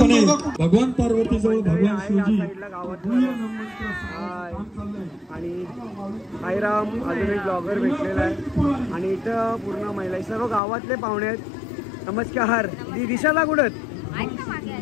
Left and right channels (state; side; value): drops out; right; at 10.6 s